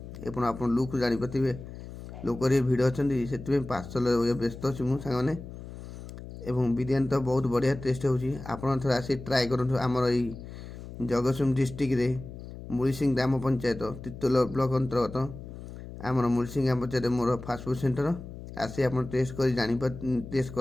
आप लुक जानीपारे लोक भिड़ अच्छा से पार्सल व्यस्त अच्छी मुझे सांगने एवं बिरयानी तो बहुत बढ़िया टेस्ट होपण थे आसी ट्राए करूँ आमर ये जगतसिंहपुर डिस्ट्रिक्ट मुड़सिंह ग्राम पंचायत तितोल ब्लॉक अंतर्गत आमर मुड़सिंह ग्राम पंचायत मोर फास्टफुड सेंटर आसी आप टेस्ट कर टेस्ट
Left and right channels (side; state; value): left; noise; hum, 12 dB below the sound